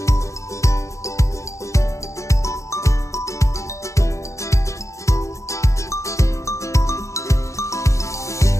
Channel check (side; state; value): right; late; 0.15 ms